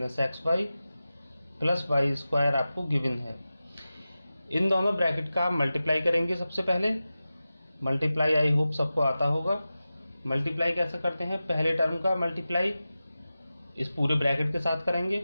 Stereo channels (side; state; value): both; inverted; correlation -0.94